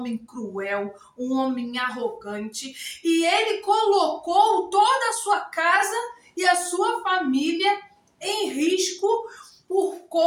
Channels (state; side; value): identical; both; correlation 1.00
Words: cruel, um homem arrogante, e ele colocou toda a sua casa e a sua família em risco por